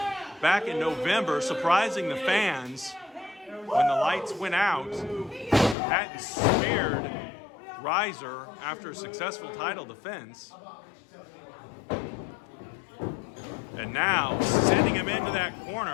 back in November, surprising the fans. When the lights went out, Hatton speared Ryzer after a successful title defense. And now, sending him into that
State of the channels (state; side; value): drops out; right; at 5.8 s